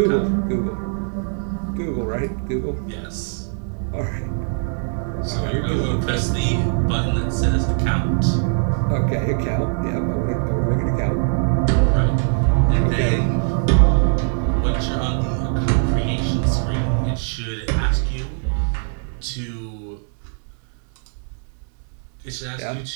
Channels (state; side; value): silent; left; 59 dB below the other